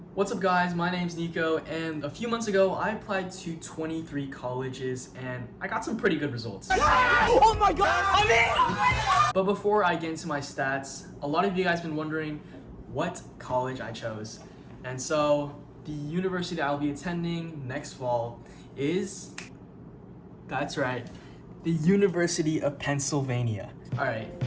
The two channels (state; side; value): identical; both; correlation 1.00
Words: What's up guys, my name's Nico, and a few months ago I applied to 23 colleges and I got some pretty good results. Oh my god, I'm in! But before I get into my stats, a lot of you guys have been wondering what college I chose. And so the university I'll be attending next fall is, that's right, the University of Pennsylvania. Alright,